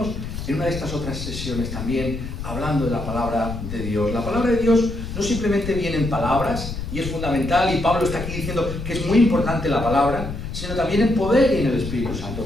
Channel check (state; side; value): noise; left; rumble, 7 dB below the sound